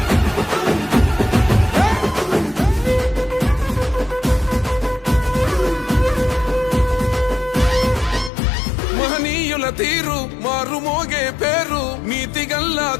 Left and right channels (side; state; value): right; drops out; at 8.3 s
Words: మహనీయుల తీరు మారుమోగే పేరు నీతిగల్లా